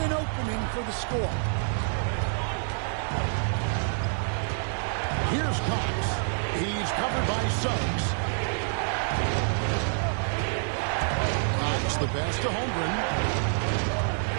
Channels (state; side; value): silent; left; 58 dB below the other